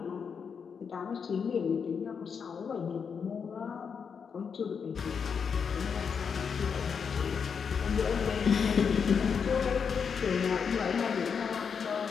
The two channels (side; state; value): right; quieter; 6.4 dB